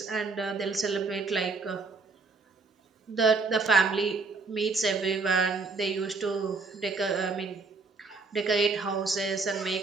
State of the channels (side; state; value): left; quieter; 4.2 dB